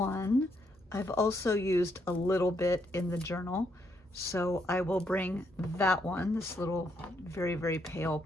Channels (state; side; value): normal; both; correlation 0.75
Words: I've also used a little bit in the journal, so I will bring that one, this little very, very pale